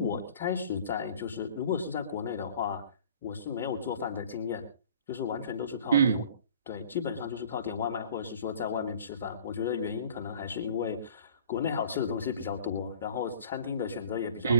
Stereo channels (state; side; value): inverted; both; correlation -0.47